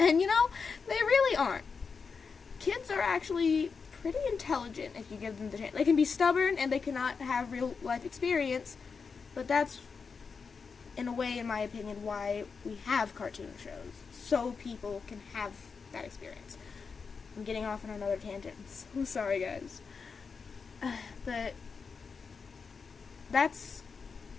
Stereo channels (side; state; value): right; quieter; 5.3 dB